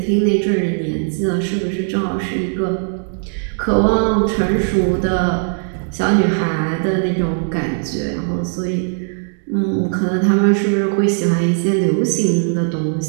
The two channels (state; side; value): silent; left; 67 dB below the other